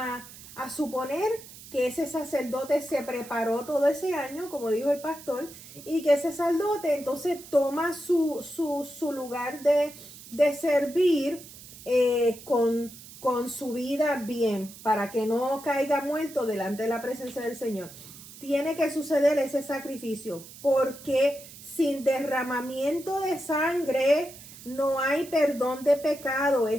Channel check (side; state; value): right; noise; hiss, 17 dB below the sound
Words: suponer que ese sacerdote se preparó todo ese año, como dijo el pastor, y que ese sacerdote entonces toma su lugar de servir con su vida bien, para que no caiga muerto delante de la presencia del Señor. Tiene que suceder ese sacrificio, porque sin derramamiento de sangre no hay perdón de pecado.